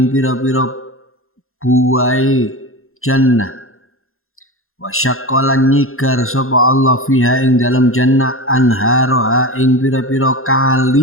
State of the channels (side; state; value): right; late; 0.61 ms